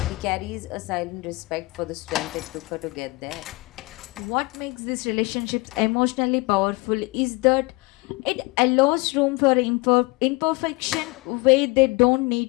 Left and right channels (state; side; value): quieter; right; 24.7 dB